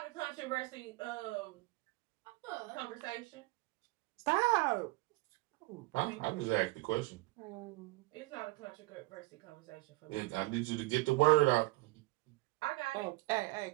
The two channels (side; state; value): left; quieter; 21.7 dB